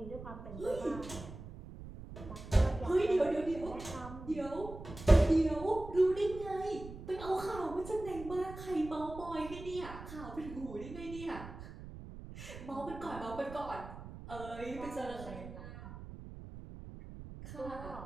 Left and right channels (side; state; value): right; noise; rumble, 12 dB below the sound